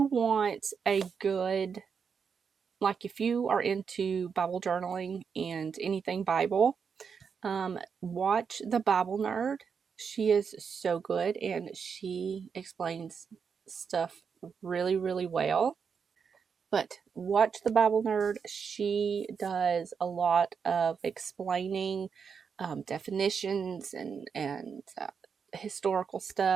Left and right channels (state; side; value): quieter; left; 6.3 dB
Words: want a good, like if you are into Bible journaling and anything Bible, watch The Bible Nerd. She is so good and she explains stuff really, really well. But watch The Bible Nerd. She does a lot of explaining definitions and historical